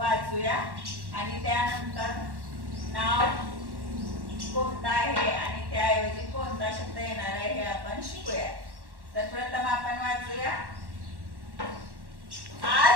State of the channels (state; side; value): late; left; 1.1 ms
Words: आणि त्यानंतर नाव कोणतं आहे आणि त्याऐवजी कोणता शब्द येणार आहे हे आपण शिकूया. तर प्रथम आपण वाचूया.